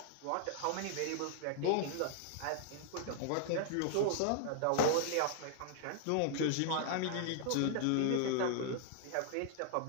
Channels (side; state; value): both; different; correlation -0.01